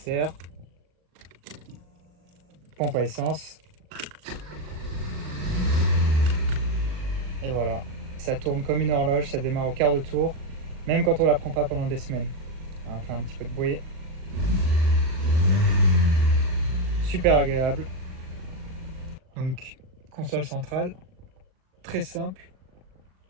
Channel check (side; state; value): left; late; 39 ms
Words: pompe à essence, et voilà. Ça tourne comme une horloge, ça démarre au quart de tour, même quand on ne la prend pas pendant des semaines. Alors, on fait un petit peu de bruit. Super agréable. Donc, console centrale, très simple,